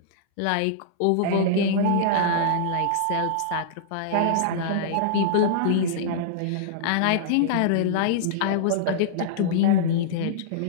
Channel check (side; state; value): both; different; correlation -0.02